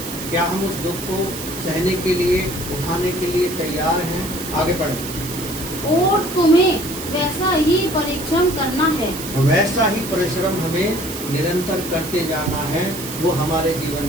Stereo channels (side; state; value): right; noise; hiss, 9 dB below the sound